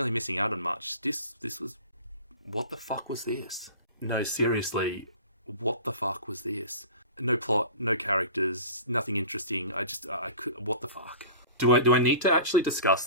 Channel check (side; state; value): both; inverted; correlation -0.38